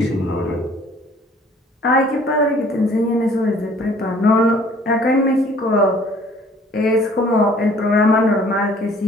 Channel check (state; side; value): normal; both; correlation 0.55